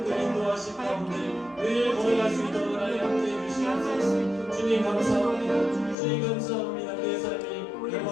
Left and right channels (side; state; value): right; drops out; at 6.0 s